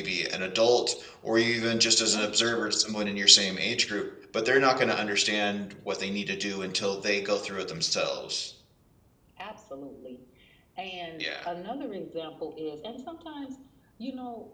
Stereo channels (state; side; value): identical; both; correlation 1.00